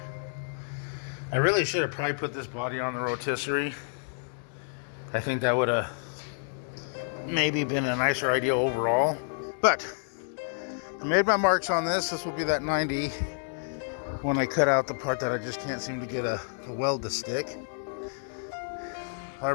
I really should have probably put this body on the rotisserie. I think that would have maybe been a nicer idea overall. But I made my marks on this. This will be that 90 when I cut out the part that I just can't seem to get a weld to stick.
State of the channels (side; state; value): right; silent; digital silence